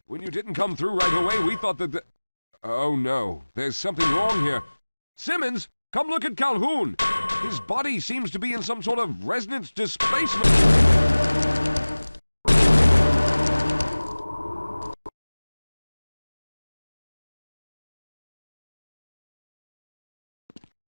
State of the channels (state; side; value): inverted; both; correlation -1.00